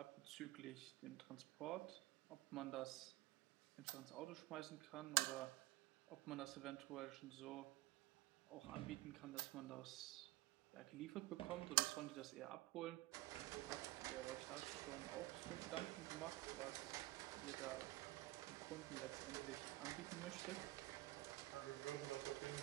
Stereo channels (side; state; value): left; quieter; 18.9 dB